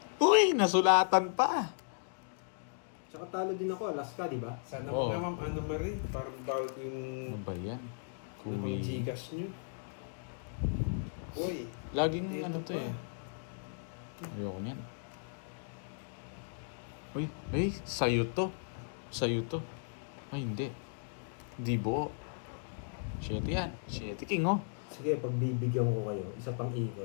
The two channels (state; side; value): silent; right; digital silence